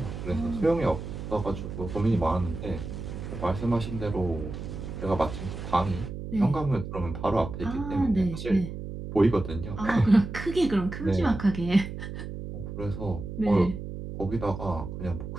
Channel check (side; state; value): right; noise; hum, 8 dB below the sound